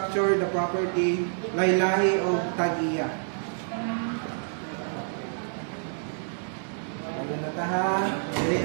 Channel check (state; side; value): silent; left; digital silence